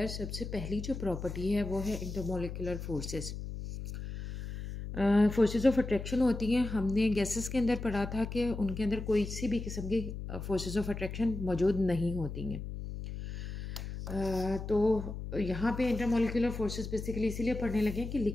सबसे पहली जो प्रॉपर्टी है वो है intermolecular forces. Forces of attraction होती हैं। हमने गैसेस के अंदर पढ़ा था कि उनके अंदर कोई सी भी किस्म की फोर्सेस ऑफ अट्रैक्शन मौजूद नहीं होती हैं। तो यहाँ पे इंटरमोलिकुलर फोर्सेस बेसिकली इसीलिए पढ़ने लगे कि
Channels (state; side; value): noise; left; hum, 7 dB below the sound